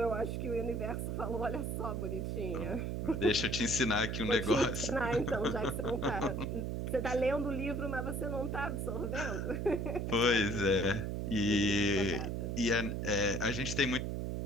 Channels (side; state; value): right; noise; hum, 2 dB below the sound